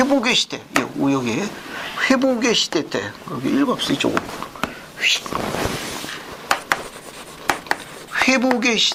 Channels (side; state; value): both; identical; correlation 1.00